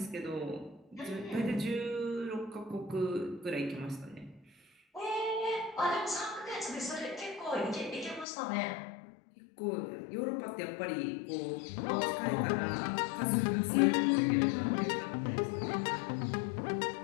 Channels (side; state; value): right; drops out; at 8.2 s